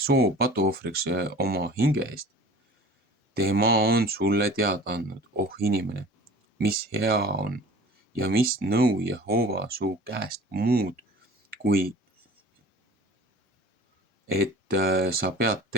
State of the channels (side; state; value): both; normal; correlation 0.42